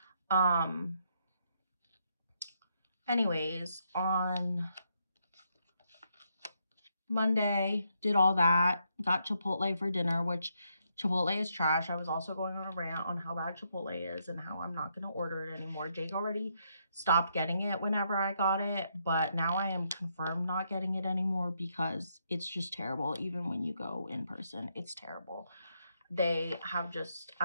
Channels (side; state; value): both; inverted; correlation -0.77